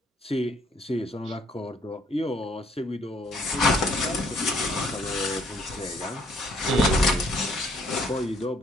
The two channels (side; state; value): both; normal; correlation 0.64